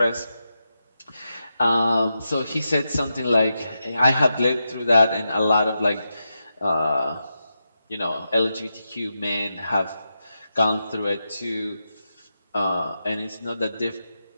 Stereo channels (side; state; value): both; inverted; correlation -0.88